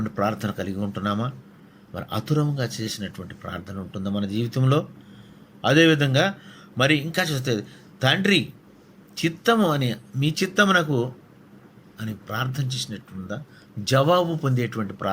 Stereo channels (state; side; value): identical; both; correlation 1.00